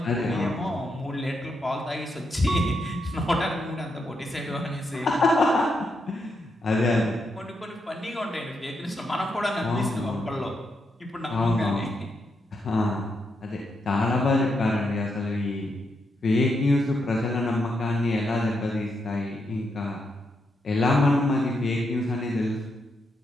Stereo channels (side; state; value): both; normal; correlation 0.82